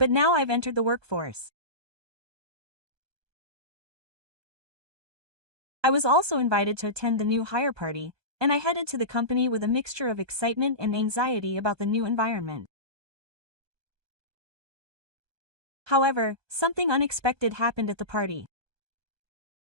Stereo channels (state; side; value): late; left; 1.2 ms